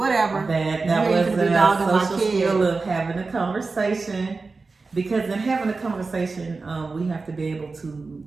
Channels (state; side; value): quieter; left; 4.0 dB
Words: That was a social skill of having a conversation. Because in having a conversation, we have to be able to